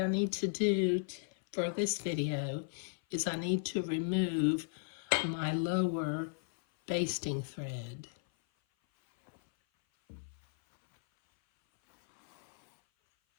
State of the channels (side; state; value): right; silent; 54 dB below the other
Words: I need to do for this video is I need to remove my lower basting thread.